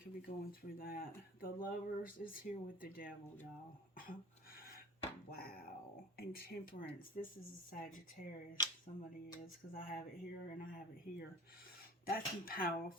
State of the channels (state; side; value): normal; both; correlation 0.41